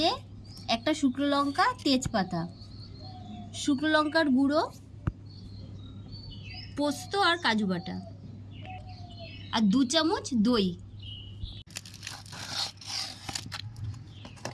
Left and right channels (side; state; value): both; identical; correlation 1.00